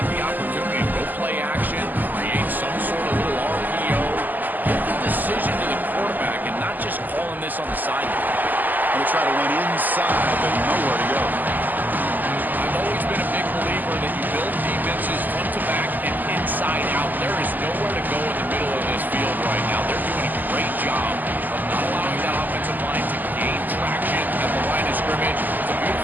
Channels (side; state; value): left; late; 0.085 ms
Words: the opportunity to go play action, create some sort of little RPO, give the decision to the quarterback, and not just calling this on the sideline. They'll try to run inside, but nowhere to go. I've always been a big believer that you build defenses front to back and inside out. There is nowhere to go in the middle of this field right now. They're doing a great job of not allowing that offensive line to gain traction at the line of scrimmage